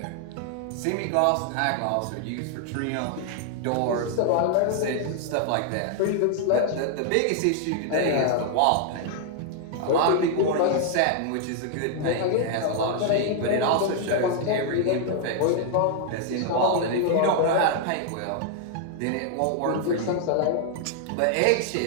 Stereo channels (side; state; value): both; different; correlation 0.00